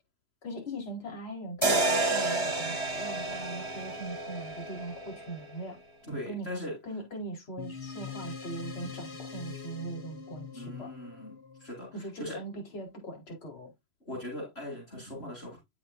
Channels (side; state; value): right; late; 3.0 ms